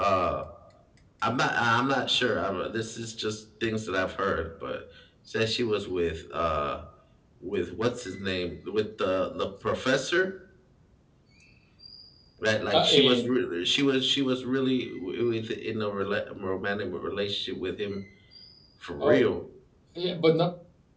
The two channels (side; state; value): both; identical; correlation 1.00